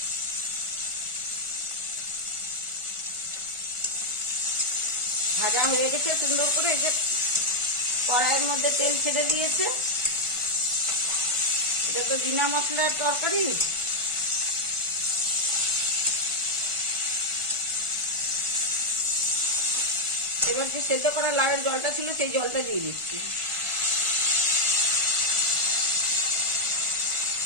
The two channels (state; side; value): late; left; 1.4 ms